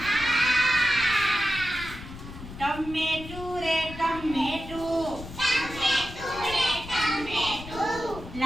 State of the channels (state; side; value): noise; left; rumble, 13 dB below the sound